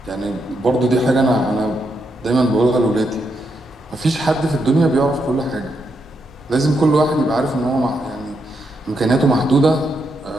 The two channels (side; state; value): both; normal; correlation 0.81